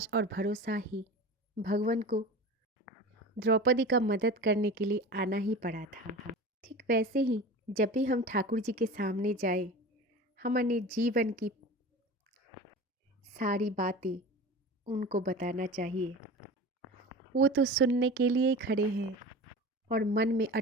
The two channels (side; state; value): both; normal; correlation 0.34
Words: और भरोसा ही भगवान को द्रौपदी का मदद करने के लिए आना ही पड़ा था। ठीक वैसे ही जब भी हम ठाकुर जी के सामने जाए, हमारे जीवन की सारी बातें उनको बताना चाहिए। वो तो सुनने के लिए ही खड़े हैं और मन में